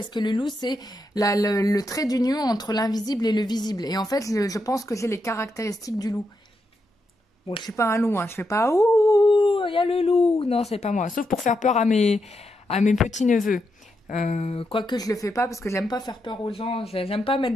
que le loup c'est le trait d'union entre l'invisible et le visible. Et en fait, je pense que j'ai les caractéristiques du loup. Bon, je suis pas un loup, hein, je fais pas « Ouh, il y a le loup !» Non, c'est pas moi, sauf pour faire peur à mes petits-neveux. Quoique je le fais pas parce que j'aime pas faire peur aux gens, j'aime pas mettre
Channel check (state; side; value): normal; both; correlation 0.83